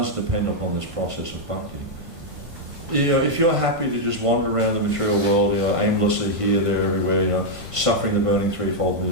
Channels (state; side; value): late; left; 1.5 ms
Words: depend upon this process of bhakti. If you're happy to just wander around the material world, aimlessly here, there, everywhere, suffering the burning threefold